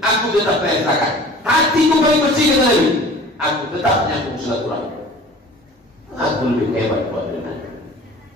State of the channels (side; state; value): both; normal; correlation 0.44